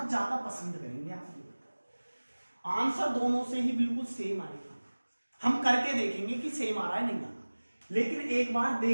ज्यादा पसंद करेंगे, आप ये बताओ। आंसर दोनों से ही बिल्कुल सेम आएगा, हम करके देखेंगे कि सेम आ रहा है नहीं आ रहा, लेकिन एक बार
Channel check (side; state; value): both; inverted; correlation -1.00